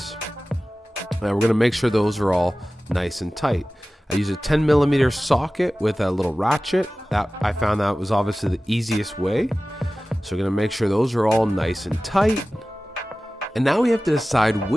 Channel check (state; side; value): normal; both; correlation 0.97